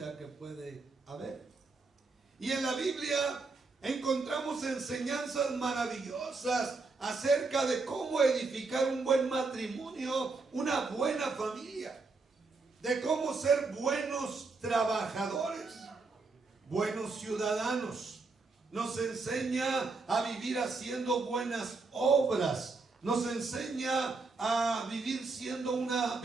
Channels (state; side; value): quieter; left; 3.9 dB